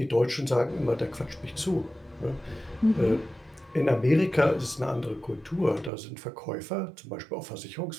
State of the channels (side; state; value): left; drops out; at 5.9 s